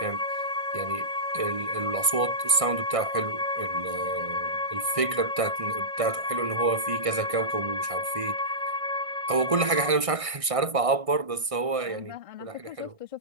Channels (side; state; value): left; late; 1.6 ms